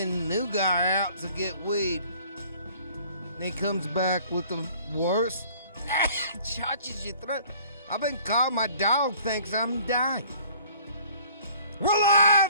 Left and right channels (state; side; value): inverted; both; correlation -0.53